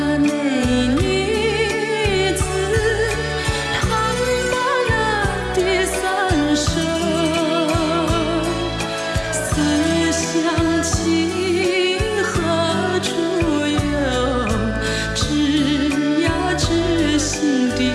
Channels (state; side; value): identical; both; correlation 1.00